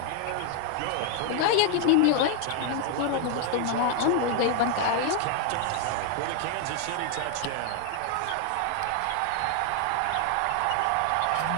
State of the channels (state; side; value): different; both; correlation 0.01